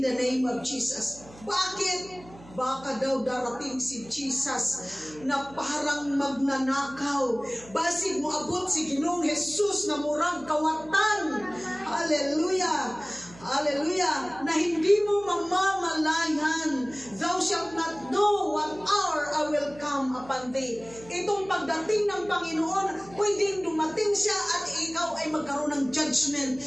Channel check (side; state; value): right; noise; hum, 21 dB below the sound